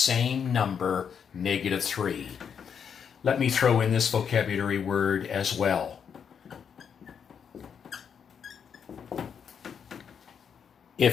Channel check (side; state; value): right; quieter; 7.3 dB